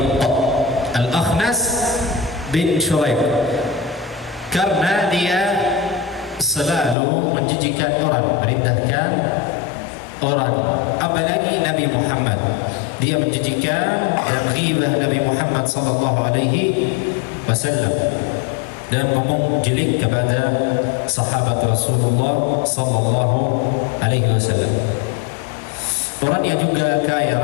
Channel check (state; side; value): drops out; right; at 7.0 s